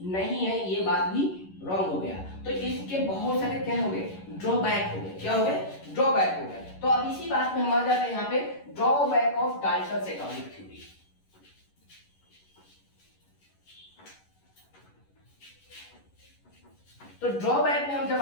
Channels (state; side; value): late; right; 11 ms